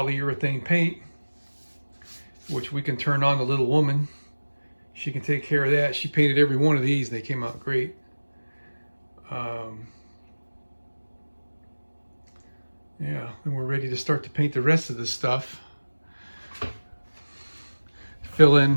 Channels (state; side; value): inverted; both; correlation -1.00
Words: paint, which we can turn on the little woman. She can take care of that. She painted every one of these. They came out great. Yeah, and we're ready to start to paint the rest of this stuff. Fill